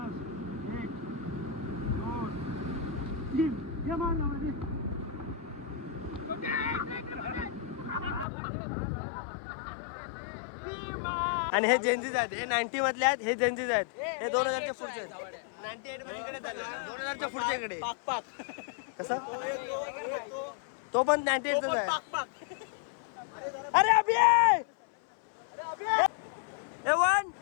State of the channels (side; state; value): right; drops out; at 8.2 s